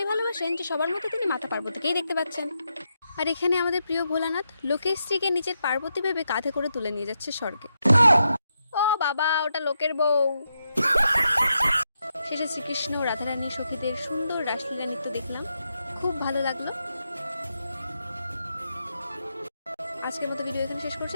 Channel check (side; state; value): both; inverted; correlation -0.84